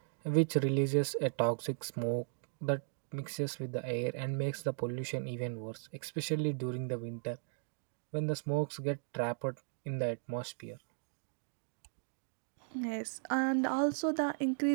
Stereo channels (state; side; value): silent; left; digital silence